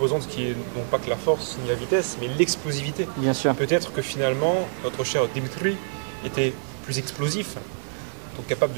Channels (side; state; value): left; silent; digital silence